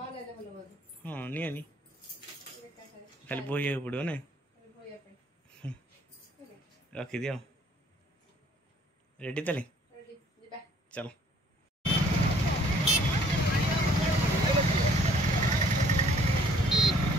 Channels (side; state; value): both; normal; correlation 0.61